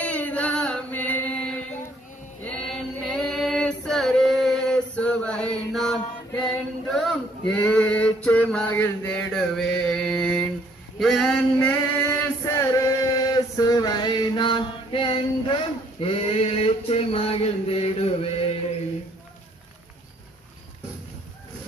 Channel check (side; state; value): both; normal; correlation 0.64